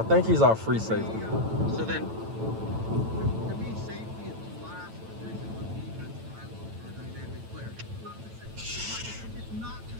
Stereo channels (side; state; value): left; late; 9.0 ms